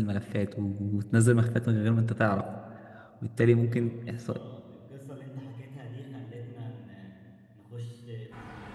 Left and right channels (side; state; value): both; identical; correlation 1.00